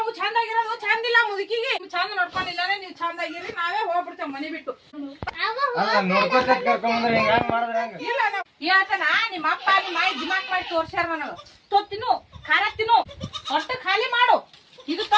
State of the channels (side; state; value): both; identical; correlation 1.00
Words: ಚಂದಾಗಿರೋದು ಚಂದಿಲ್ಲ ಮುದುಕಿಗೆ ಚಂದ ನೋಡ್ಕೊಂಡಿಲ್ಲ ನೀವು ಚಂದಾಗಿರಿ ನಾವೇ ಹೋಗ್ಬಿಡ್ತೇವೆ ಮನೆ ಬಿಟ್ಟು ನೋಡ್ಕೊತ ಕರ್ಕೊಂಡ್ರೆ ಹೆಂಗ್ ಮಾಡಿದ್ರೆ ಹೆಂಗ ಇಲ್ಲ ಹೇಳ್ತಾನ ನಿಮ್ಮ ಅಪ್ಪ ನಿಮ್ಮ ಮಾಯಿ ದಿಮಾಕ್ ಮಾಡಿ ತೋರ್ಸ್ಯಾರ ನನಗ ತಿನ್ನು ಖಾರ ತಿನ್ನು ಹೊಟ್ಟೆ ಖಾಲಿ ಮಾಡು ಇದು